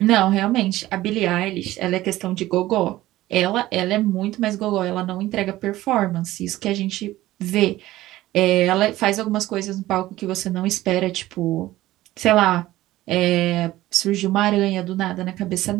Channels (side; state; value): left; quieter; 16.2 dB